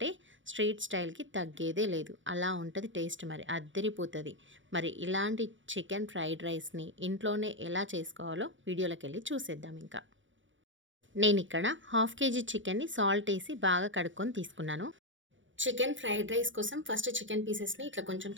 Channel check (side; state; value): left; late; 0.56 ms